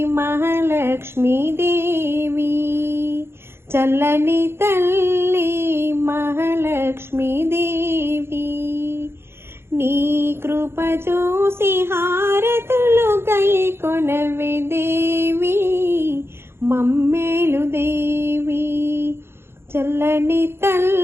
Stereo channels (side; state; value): left; late; 0.12 ms